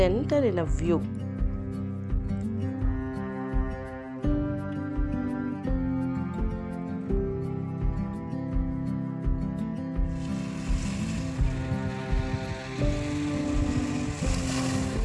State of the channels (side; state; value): both; identical; correlation 1.00